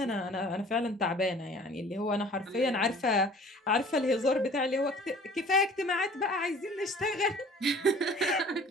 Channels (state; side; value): normal; both; correlation 0.49